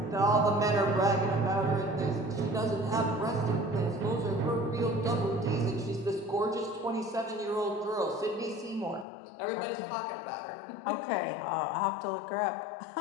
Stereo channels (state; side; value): drops out; right; at 9.1 s